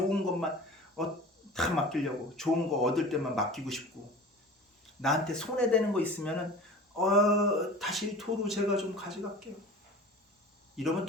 것만 다 맡기려고 좋은 거 얻을 때만 맡기고 싶고 나한테 손해되는 거 있으면은 다시 도로 제가 좀 가져갈게요. 이러면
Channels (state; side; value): normal; both; correlation 0.39